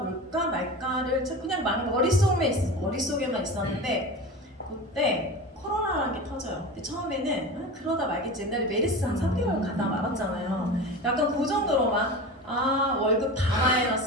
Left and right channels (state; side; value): normal; both; correlation 0.30